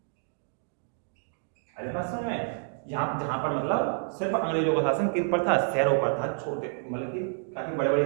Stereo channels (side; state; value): left; silent; 59 dB below the other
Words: अरे बात समझ में? जहां पर मतलब सिर्फ अंग्रेजों का शासन किन पर था? शहरों पर था। छोटे मतलब कि काफी बड़े बड़े